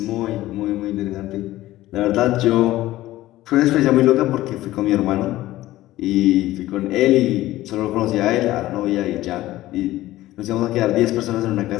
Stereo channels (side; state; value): right; quieter; 15.9 dB